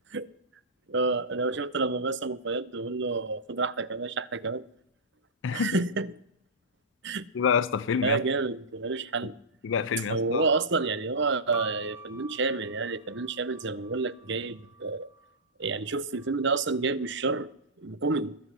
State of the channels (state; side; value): normal; both; correlation -0.15